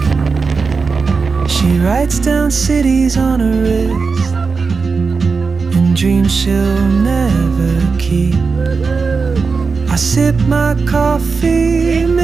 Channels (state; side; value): quieter; left; 4.7 dB